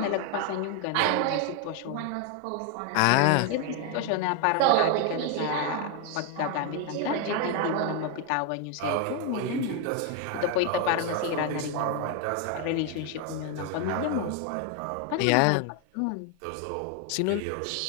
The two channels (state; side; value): different; both; correlation 0.01